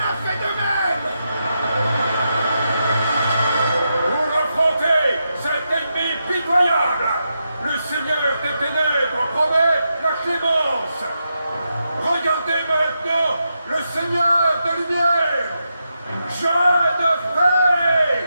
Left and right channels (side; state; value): both; inverted; correlation -0.85